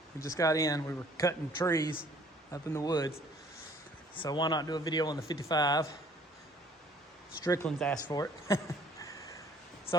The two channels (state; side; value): normal; both; correlation 0.57